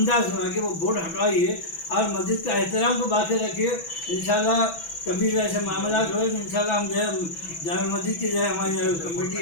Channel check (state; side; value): late; right; 6.0 ms